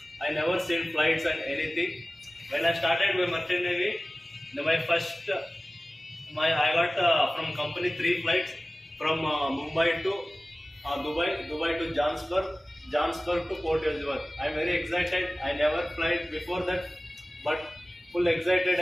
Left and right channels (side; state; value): both; normal; correlation 0.97